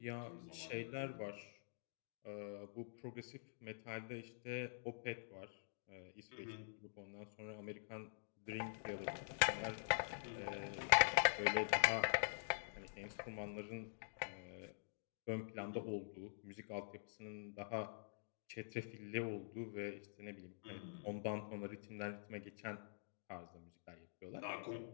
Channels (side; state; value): right; silent; digital silence